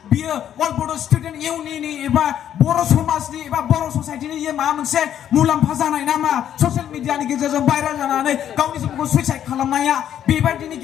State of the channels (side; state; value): right; quieter; 10.2 dB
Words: बियो अल बड' स्टुडेन्ट इउनियननि एबा बर' समाजनि एबा बर' ससाइटिनि माबा मोनसे मुलाम्फा जानाय नामा ससियेल मिडियानि गेजेरजों भाइरेल जानानै गावनि जिबनखौ सुइसाइड खालामनाया बेबायदिनि